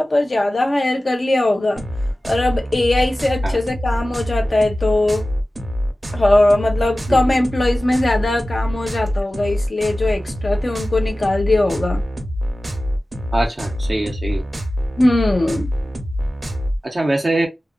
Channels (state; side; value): normal; both; correlation 0.96